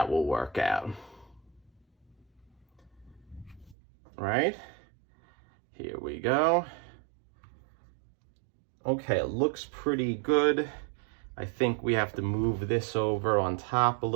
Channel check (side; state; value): left; drops out; at 3.8 s